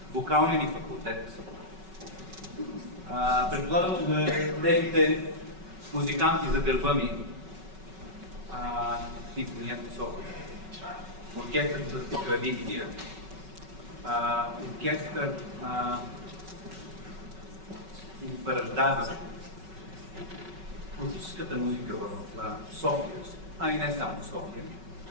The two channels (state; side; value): late; left; 5.3 ms